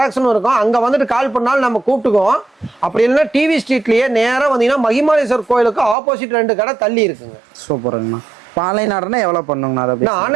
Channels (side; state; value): left; drops out; at 6.0 s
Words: இருக்கும், அங்க வந்துட்டு கால் பண்ணாலும் நம்ம கூப்பிட்டுக்குவோம். அப்படி இல்லைன்னா டிவி ஸ்ட்ரீட்லயே நேரா வந்தீங்கன்னா மகிமாலேஸ்வர் கோயிலுக்கு ஆப்போசிட் 2 கடை தள்ளி இருக்குங்க. சூப்பருங்கண்ணா. இப்போ ஆன்லைன் ஆர்டர்னா எவ்வளோ பண்ணுங்கண்ணா? அதை